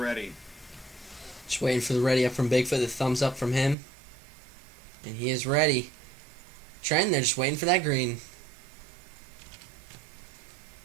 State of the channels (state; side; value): drops out; left; at 3.8 s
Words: Just waiting for the ready up from Bigfoot, the thumbs up from him. And he is ready. Trenton, they're just waiting for that green.